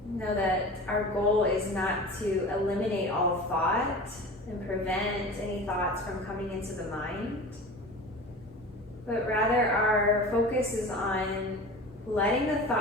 Know that our goal is not to eliminate all thought and prevent any thoughts from coming into the mind, but rather our focus is on letting the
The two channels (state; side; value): normal; both; correlation 0.35